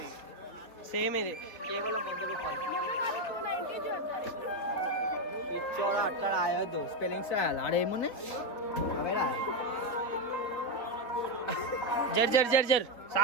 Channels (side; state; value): right; late; 3.6 ms